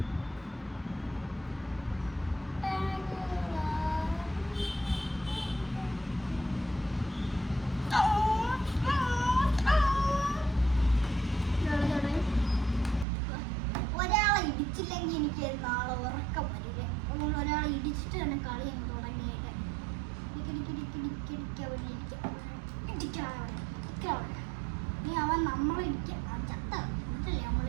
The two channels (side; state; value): left; drops out; at 13.1 s